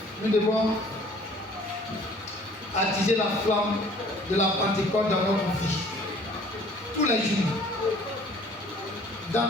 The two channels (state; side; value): normal; both; correlation 0.54